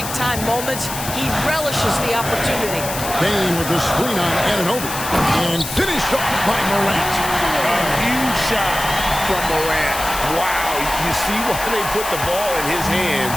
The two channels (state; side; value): noise; left; hiss, 7 dB below the sound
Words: moments. He relishes the opportunity. Bain with the screen on Anunoby. And finished off by Morant. A huge shot from Morant. Wow, you see why they put the ball in his hands